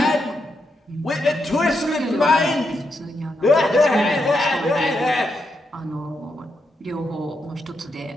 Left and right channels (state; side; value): normal; both; correlation 0.82